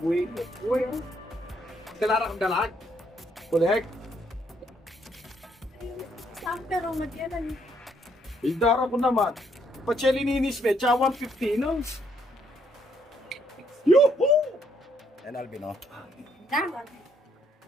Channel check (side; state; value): both; normal; correlation 0.71